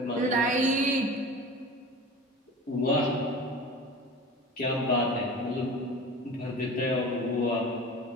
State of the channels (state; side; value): normal; both; correlation 0.36